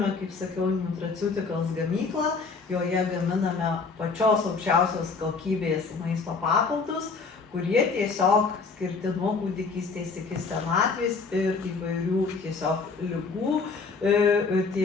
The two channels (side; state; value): right; quieter; 4.6 dB